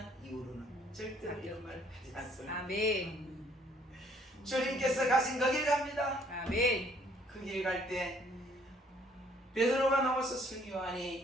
이후로는 절대로 이런 말 하지 않습니다. 아멘. 주님께서 가신 그 길 갑니다. 아멘. 그 길 갈 때 베드로가 나와서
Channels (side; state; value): both; normal; correlation 0.62